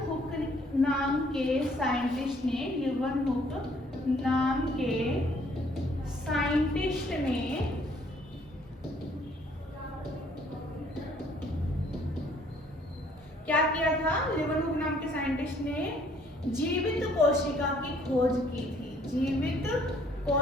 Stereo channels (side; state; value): both; normal; correlation 0.62